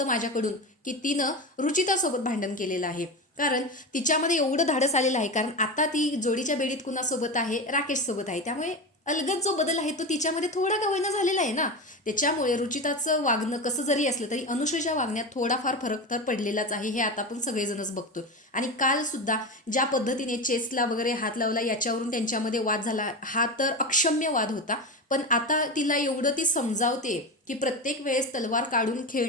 माझ्याकडून की तिनं रुचितासोबत भांडण केलेलं आहे. कारण तिच्यामध्ये एवढं धाडस आलेलं आहे, कारण आता ती जोडीच्या बेडीत कुणासोबत आहे, राकेश सोबत आहे. त्यामुळे अलगद जो बदल आहे तो तिच्यामध्ये थोडा का होईना झालेला आहे ना. त्याच्यामुळे रुचिताचं वागणं कसं जरी असलं तरी अनुश्रीच्या वागण्यात थोडाफार फरक तर पडलेलाच आहे, हे आता आपण सगळेजणच बघतोय. आणि काल सुद्धा ज्या पद्धतीने चेसला वगैरे हात लावला याच्यावरून त्यांच्यामध्ये वाद झाला, हा तर अक्षम्य वाद होता. पण आता तिला एवढं ती समजावते की प्रत्येक वेळेस तलवार काढून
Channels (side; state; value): both; normal; correlation 0.22